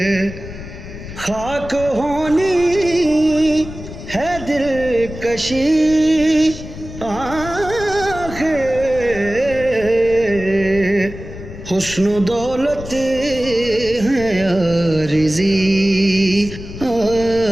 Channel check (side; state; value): left; noise; rumble, 12 dB below the sound